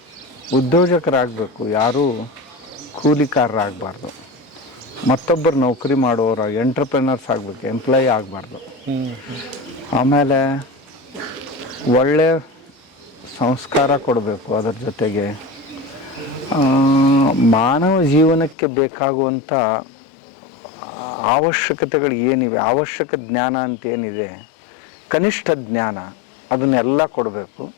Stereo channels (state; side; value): drops out; right; at 18.6 s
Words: ಉದ್ಯೋಜಕರಾಗಬೇಕು, ಯಾರೂ ಕೂಲಿಕಾರರಾಗಬಾರ್ದು. ಮತ್ತೊಬ್ಬರು ನೌಕರಿ ಮಾಡೋರು ಎಂಟ್ರಪ್ರೆನರ್ಸ್ ಆಗಬೇಕು, ಎಂಪ್ಲಾಯಿ ಆಗಬಾರ್ದು. ಆಮೇಲೆ ಒಳ್ಳೆ ಸಂಸ್ಕಾರ ಕೊಡಬೇಕು. ಅದರ ಜೊತೆಗೆ ಮಾನವ ಜೀವನಕ್ಕೆ ಬೇಕಾಗುವಂಥ ಅವಶ್ಯಕತೆಗಳು ಏನಿವೆ, ಅವಶ್ಯಕ ಜ್ಞಾನ ಅಂತ ಏನಿದೆ, ಕನಿಷ್ಠ ಜ್ಞಾನ, ಅದನ್ನೆಲ್ಲ ಕೊಡಬೇಕು.